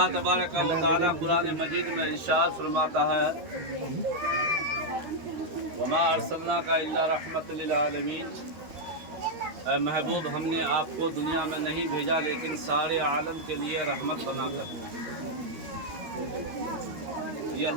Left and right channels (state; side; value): late; left; 13 ms